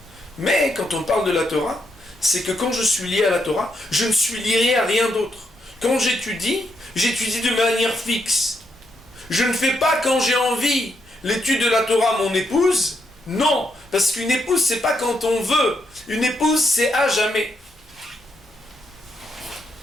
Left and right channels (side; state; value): both; normal; correlation 0.79